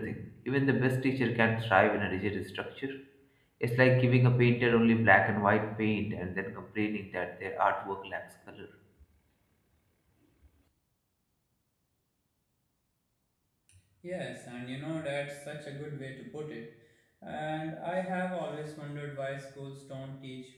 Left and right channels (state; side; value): identical; both; correlation 1.00